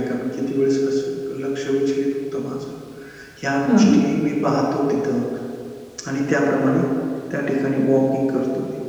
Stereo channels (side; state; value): both; identical; correlation 1.00